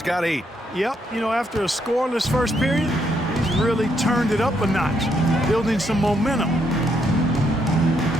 got 8. Yep, you know, after a scoreless first period, he's really turned it up a notch, building some momentum.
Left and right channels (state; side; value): normal; both; correlation 0.76